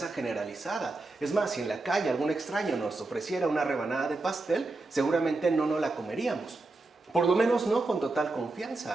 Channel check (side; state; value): left; quieter; 3.2 dB